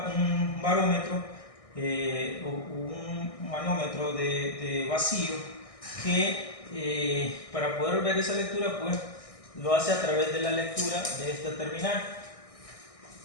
barómetro o un manómetro de vacío que para poder ver esa lectura pues lo hace a través de la lectura de esta terminal.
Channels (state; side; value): late; right; 1.6 ms